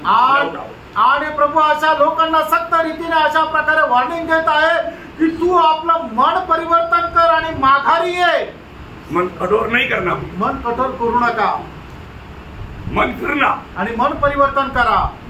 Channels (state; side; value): identical; both; correlation 1.00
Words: आणि प्रभू अशा लोकांना सक्त रीतीने अशा प्रकारे वॉर्निंग देत आहे की तू आपलं मन परिवर्तन कर आणि माघारी ये. मन कठोर नहीं करना, मन कठोर करू नका, मन फिरना आणि मन परिवर्तन करा.